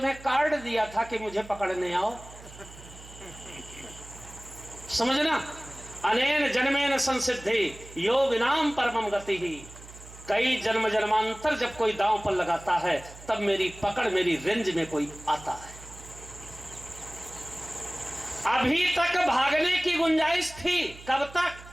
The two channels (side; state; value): right; noise; hum, 18 dB below the sound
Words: कार्ड दिया था कि मुझे पकड़ने आओ। समझना, अनेन जन्मेन संसिद्धि यो विनाम परमम गति ही। कई जन्म जन्मांतर जब कोई दांव पर लगाता है तब मेरी पकड़, मेरी रेंज में कोई आता है। अभी तक भागने की गुंजाइश थी, कब तक?